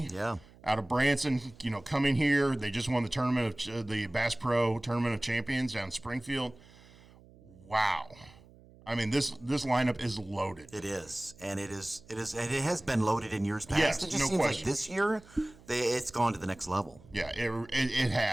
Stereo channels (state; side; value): noise; right; hum, 24 dB below the sound